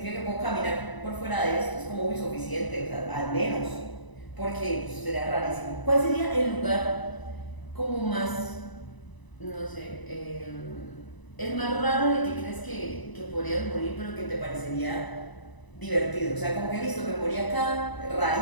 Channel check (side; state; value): right; late; 1.0 ms